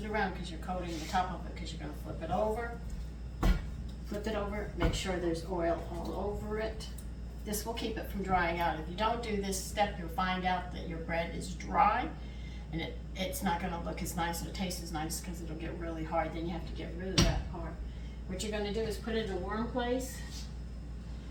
around because you're coating the top of it, because you're going to flip it over. Flip it over, make sure there's oil all over it. This will keep it from drying out. If you don't do this step, you'll find out that your bread is dry, and it's not going to look as nice or taste as nice, because it'll get really hard. Then you have to get rid of that part. What you're going to do is put it in a warm place,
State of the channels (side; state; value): both; identical; correlation 1.00